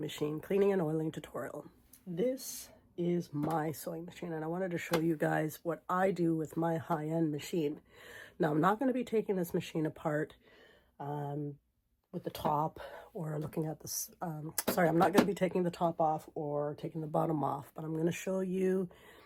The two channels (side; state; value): both; identical; correlation 1.00